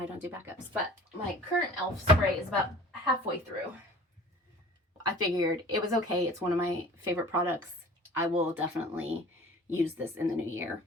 don't do backups, but my current e.l.f. spray is about halfway through. I figured it was okay. It's one of my favorite products. I will definitely use this in the new year.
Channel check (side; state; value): both; normal; correlation 0.44